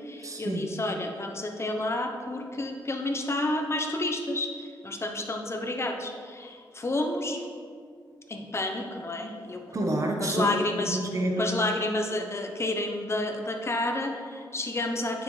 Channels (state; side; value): normal; both; correlation 0.58